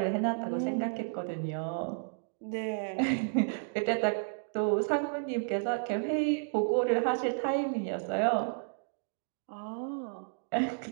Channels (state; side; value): silent; left; digital silence